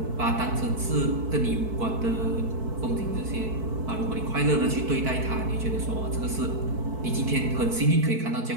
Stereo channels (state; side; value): late; left; 4.6 ms